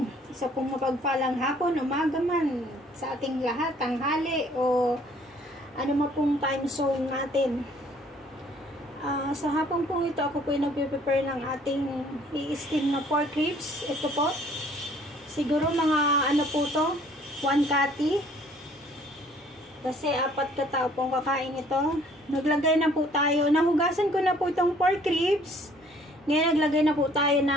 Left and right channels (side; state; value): both; normal; correlation 0.58